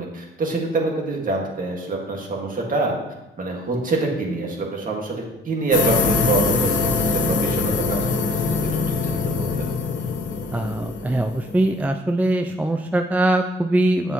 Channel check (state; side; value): normal; both; correlation 0.55